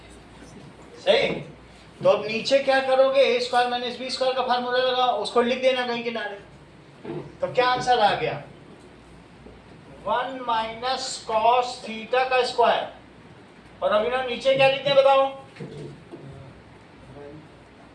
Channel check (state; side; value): identical; both; correlation 1.00